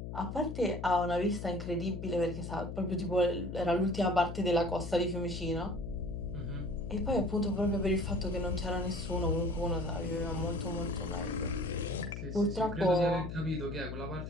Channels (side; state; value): left; noise; hum, 7 dB below the sound